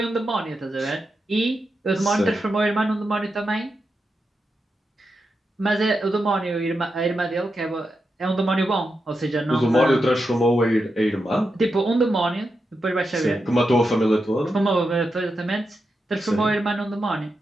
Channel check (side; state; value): both; normal; correlation 0.87